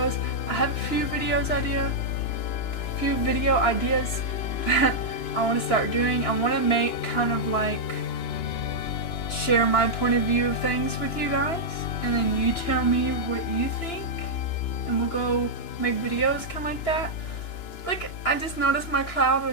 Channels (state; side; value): late; right; 2.9 ms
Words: I have a few video ideas that I want to start doing. I want to make kind of like share my point of view of things with you guys, and then you tell me what you think, and we'll go make videos kind of like that. Like, I just noticed my cloud